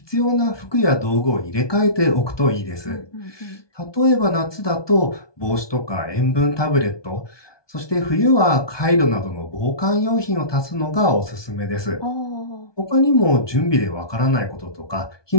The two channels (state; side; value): late; right; 1.2 ms